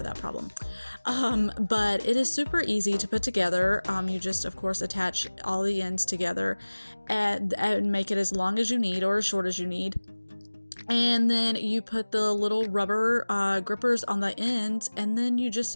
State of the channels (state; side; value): inverted; both; correlation -1.00